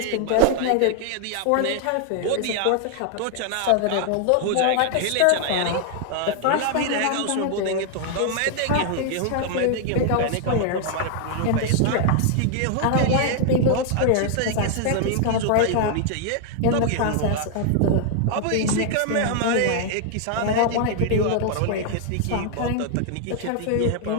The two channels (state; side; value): different; both; correlation 0.00